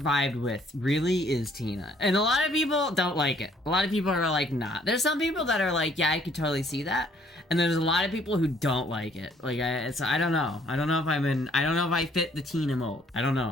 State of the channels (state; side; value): normal; both; correlation 0.62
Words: with really is Tina. And a lot of people don't like it. A lot of people are like, nah. There's some people that are like, yeah, I could totally see that. And there's a lot of people who don't like it. Like, I don't know. I don't know if I don't know if I fit the Tina mold. I don't